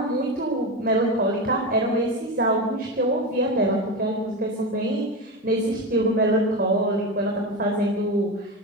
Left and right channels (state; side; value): normal; both; correlation 0.19